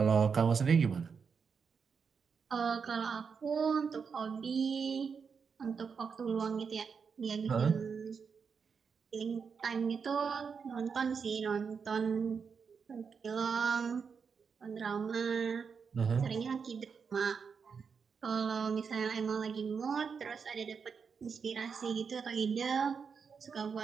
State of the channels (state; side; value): quieter; left; 5.9 dB